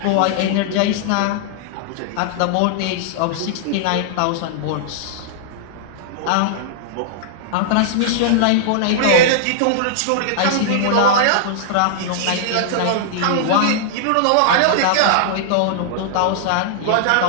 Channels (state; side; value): different; both; correlation -0.01